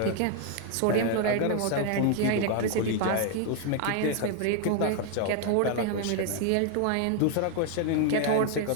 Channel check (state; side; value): different; both; correlation 0.00